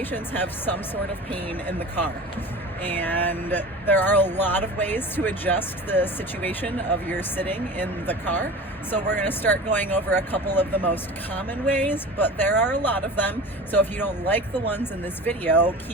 have some sort of pain in the car, and there are a lot of ways to adjust the situation of your sitting in the car. So we're going to start going over a couple of the most common ways, but there are a lot of them. So if you don't like the ones in this video,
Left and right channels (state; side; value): normal; both; correlation 0.35